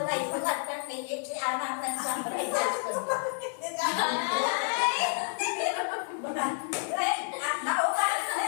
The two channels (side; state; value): right; silent; digital silence